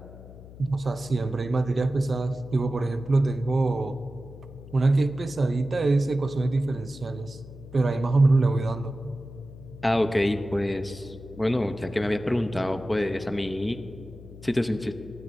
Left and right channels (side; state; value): left; noise; hum, 17 dB below the sound